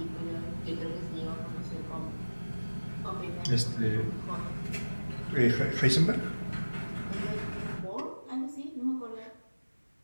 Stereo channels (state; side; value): inverted; both; correlation -1.00